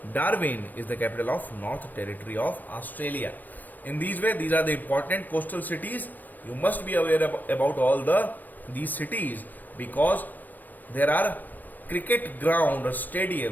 Darwin is the capital of North Territory of Australia. In these way, these are the important coastal cities. You must be aware about all these cities, because there are cricket ground or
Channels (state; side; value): late; right; 0.085 ms